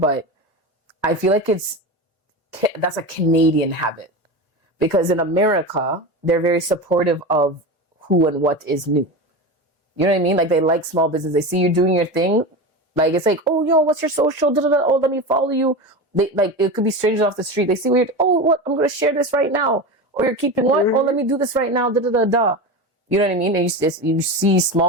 I feel like that's a Canadian habit, because in America they're very supportive of who and what is new. You know what I mean? Like, they like small business. They see you doing your thing. Like, it's like, oh, yo, what's your social? Da-da-da. Oh, let me follow you. They, like, it could be strangers off the street. They see weird. Oh, what? I'm going to share this right now. Or you're keeping what? Oh, let me do this right now. Da-da-da-da. You know what I mean? And you see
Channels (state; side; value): normal; both; correlation 0.24